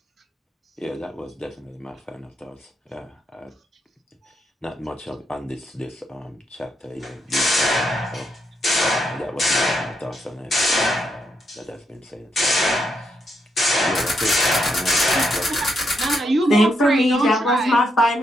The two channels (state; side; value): normal; both; correlation 0.79